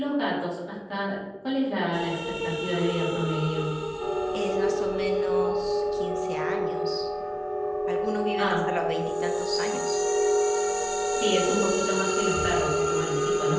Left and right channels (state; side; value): identical; both; correlation 1.00